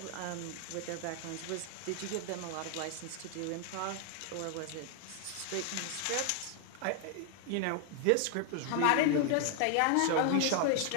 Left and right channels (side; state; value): both; different; correlation 0.00